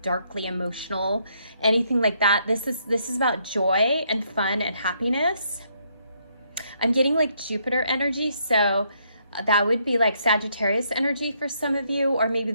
darkly emotional, anything like that. This is about joy and fun and happiness. I'm getting like Jupiter energy, so that would be like Sagittarius energy for some of you, or maybe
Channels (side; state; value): both; inverted; correlation -0.73